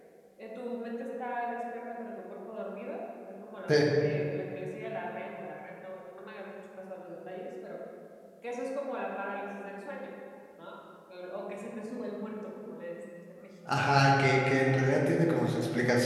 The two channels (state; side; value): identical; both; correlation 1.00